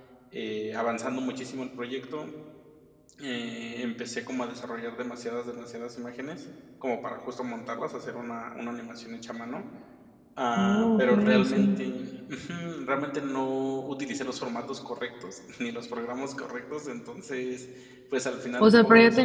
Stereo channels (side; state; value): both; identical; correlation 1.00